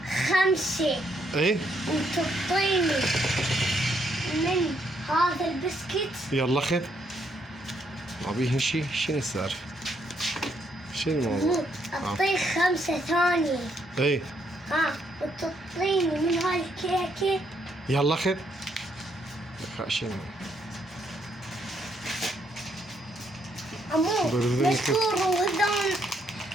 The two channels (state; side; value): normal; both; correlation 0.73